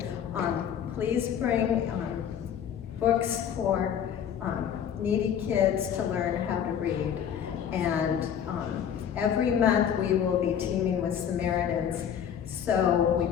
Please bring books for needy kids to learn how to read. And every month we will be teaming with Samaritans, so we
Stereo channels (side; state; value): right; quieter; 8.7 dB